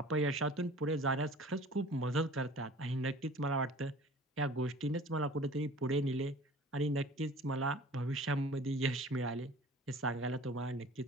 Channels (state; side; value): normal; both; correlation 0.45